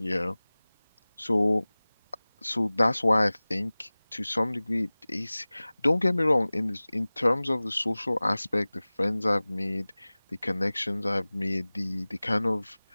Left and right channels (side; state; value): both; inverted; correlation -0.99